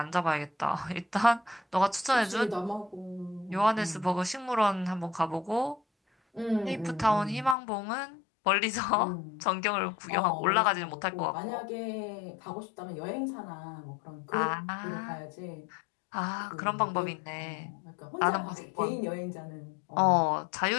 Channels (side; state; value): right; drops out; at 7.6 s